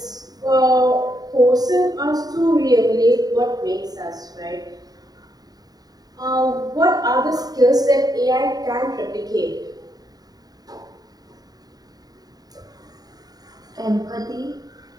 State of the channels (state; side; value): late; left; 0.18 ms